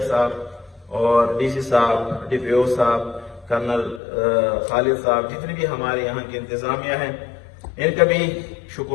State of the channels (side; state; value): right; drops out; at 4.0 s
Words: صاحب اور DC صاحب، DPO صاحب، کرنل خالد صاحب، جتنے بھی ہمارے یہاں کی انتظامیہ ہیں ان کا بھی